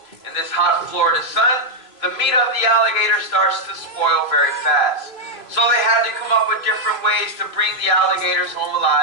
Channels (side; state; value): right; late; 3.0 ms